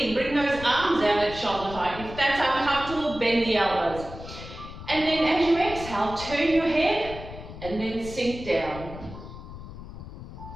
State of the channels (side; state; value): left; noise; rumble, 12 dB below the sound